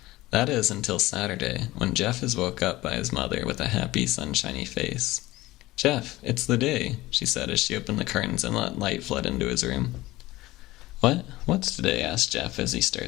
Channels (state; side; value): quieter; right; 18.2 dB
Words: That is until Saturday, when Jeff is woke up by his mother with a happy, sunshiny face. "Jeff, it's the day," she said as she opened the curtains and let light flood into his room. "What? What's today?" asked Jeff as he